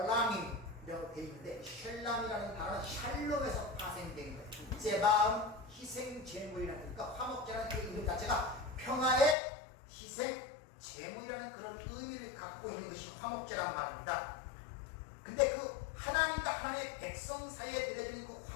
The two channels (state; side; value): drops out; right; at 9.3 s